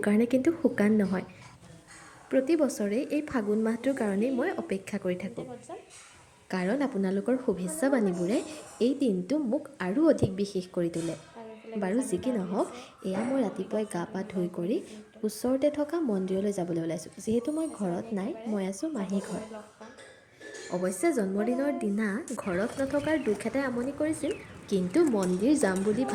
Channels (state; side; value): identical; both; correlation 1.00